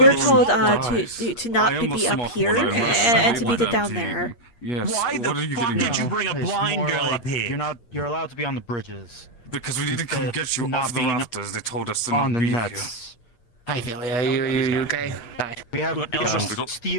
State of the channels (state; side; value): late; right; 8.5 ms